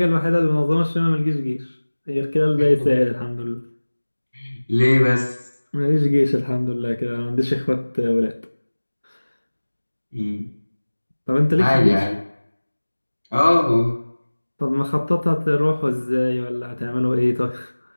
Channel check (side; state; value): both; inverted; correlation -1.00